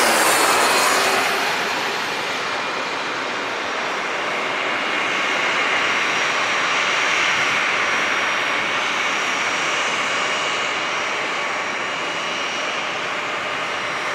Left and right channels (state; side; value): identical; both; correlation 1.00